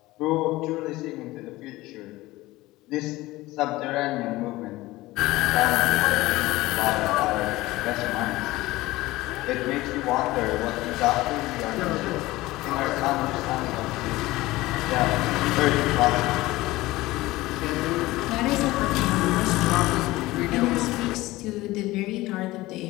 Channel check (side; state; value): right; quieter; 18.7 dB